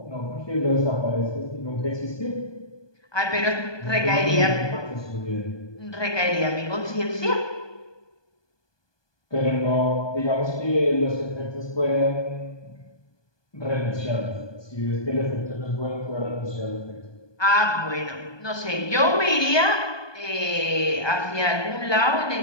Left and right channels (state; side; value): late; right; 1.2 ms